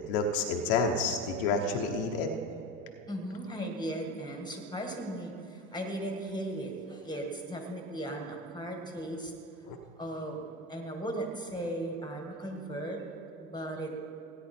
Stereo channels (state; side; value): normal; both; correlation 0.26